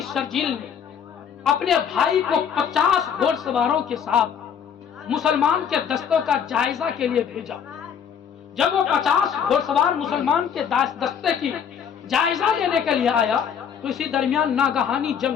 شرجیل نے اپنے بھائی کو 50 گھوڑ سواروں کے ساتھ مسلمان کے دستوں کا جائزہ کے لیے بھیجا۔ جب وہ 50 گھوڑ سوار مسلمان کے دستے کی جائزہ لینے کے لیے آیا تو اسی درمیان ناگہانی جنگ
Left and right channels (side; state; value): right; quieter; 7.8 dB